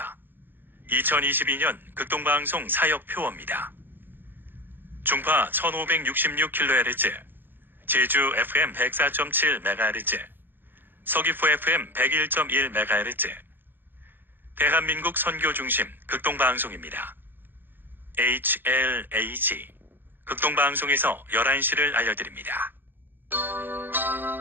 2022년 극동방송 사역표어입니다. 중파 1566kHz, 제주 FM 104.7MHz, 서귀포 FM 101.1MHz, 대한민국 선교중심 극동방송입니다. HLAG 극동방송에서 11시를 알려드립니다.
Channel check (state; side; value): late; left; 0.096 ms